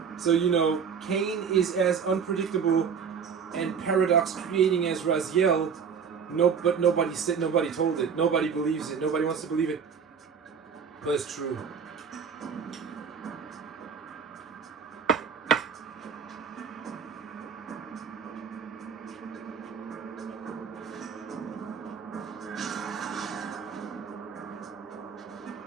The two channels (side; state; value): left; quieter; 6.6 dB